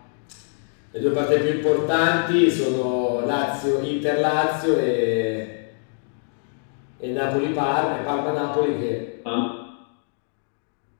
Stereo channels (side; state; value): right; silent; digital silence